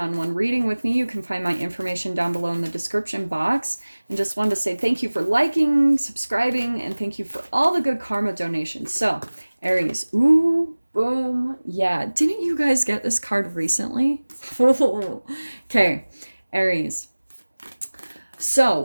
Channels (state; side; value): inverted; both; correlation -1.00